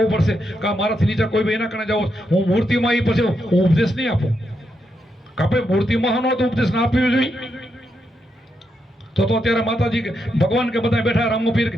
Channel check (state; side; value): normal; both; correlation 0.82